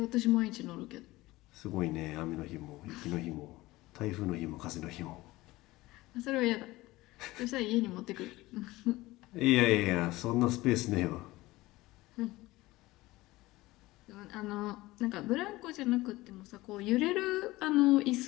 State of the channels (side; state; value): right; quieter; 19.1 dB